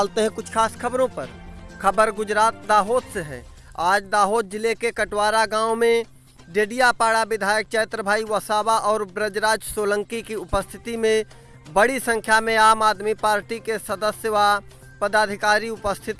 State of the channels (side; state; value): both; identical; correlation 1.00